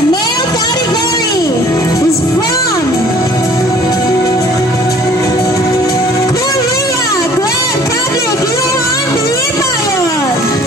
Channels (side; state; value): both; normal; correlation 0.53